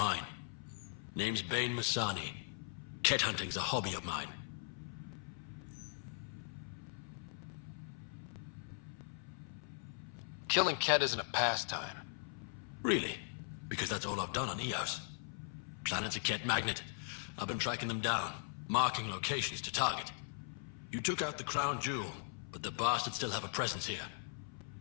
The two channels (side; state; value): right; silent; 51 dB below the other